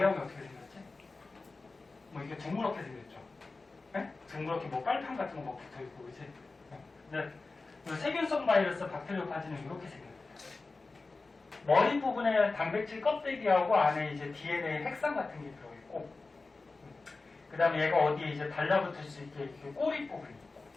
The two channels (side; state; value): right; quieter; 3.7 dB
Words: 어떻게 생겼지? 뭐 이게 둥그렇게 생겼죠. 네? 둥그렇게 뭐 빨판 같은 거 막 붙어 있고, 그지? 근데 세균성 바이러스 박테리오파지는 이렇게 생겼어요. 머리 부분에 단백질 껍데기하고 안에 이제 DNA 핵산 같은 게 들어있고, 그 다음에 얘가 어디에 이제 달라붙을 수 있게 이렇게 꼬리 부분이 있고.